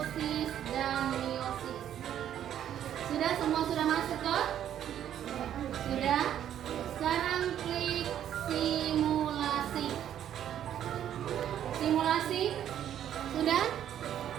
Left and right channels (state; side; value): quieter; left; 10.4 dB